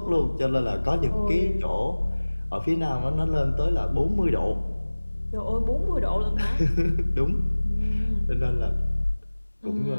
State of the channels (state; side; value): inverted; both; correlation -1.00